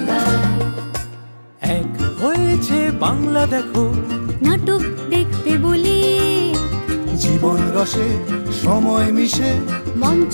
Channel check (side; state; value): both; inverted; correlation -1.00